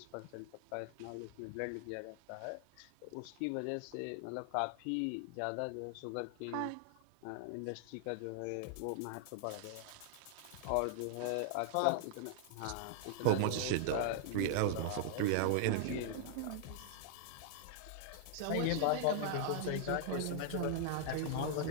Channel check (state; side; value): different; both; correlation -0.01